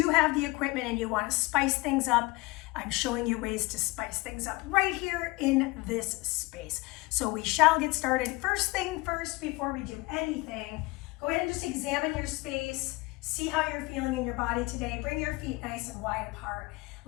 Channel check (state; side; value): quieter; right; 23.2 dB